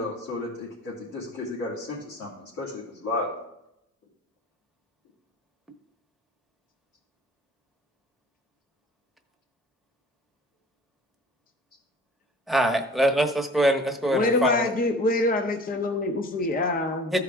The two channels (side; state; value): both; normal; correlation 0.46